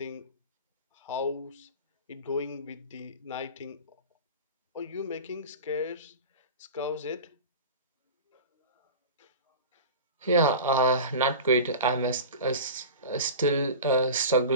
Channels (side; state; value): both; inverted; correlation -0.32